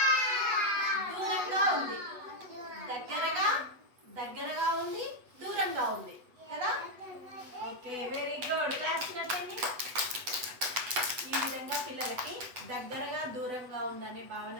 దూరంగా ఉంది. దగ్గరగా ఉంది, దూరంగా ఉంది కదా. ఓకే, వెరీ గుడ్, క్లాస్ కట్టండి. ఈ విధంగా పిల్లలకి దగ్గరగా దూరంగా ఉందనే భావన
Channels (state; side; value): late; left; 8.0 ms